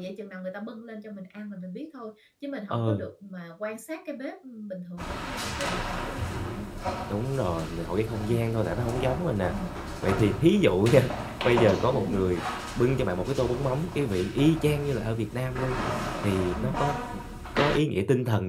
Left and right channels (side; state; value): both; identical; correlation 1.00